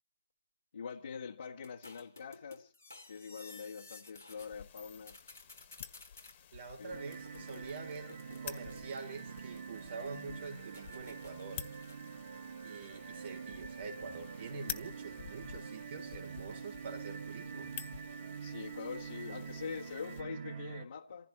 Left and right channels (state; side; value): inverted; both; correlation -0.66